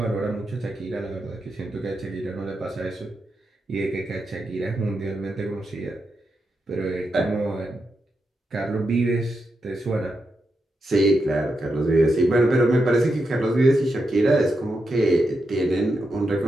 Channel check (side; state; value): both; normal; correlation 0.86